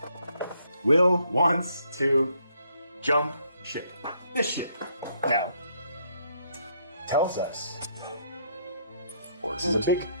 Will wants to jump ship. This ship. Now, tells us, or this is a big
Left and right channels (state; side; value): inverted; both; correlation -0.70